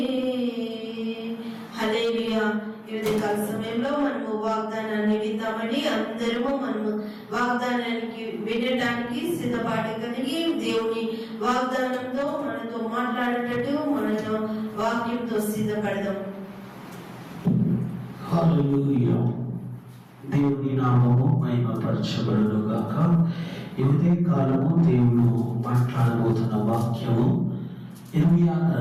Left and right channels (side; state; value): both; identical; correlation 1.00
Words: హల్లెలూయా. ఈ ఉదయకాల సమయంలో మనము వాగ్దానాన్ని విందామని అందరము మనము వాగ్దానానికి వినడానికి సిద్ధపాటు కలిగి దేవుని వాగ్దానంతో మనతో మాట్లాడేటట్టు మనతో వాక్యంతో సిద్ధపడదాం. హల్లెలూయా. దేవుని నామము మహిమపరచబడును గాక. ఈ ఉదయకాలము దేవుడు మాట్లాడబోతున్న వాక్యము ఇర్మియా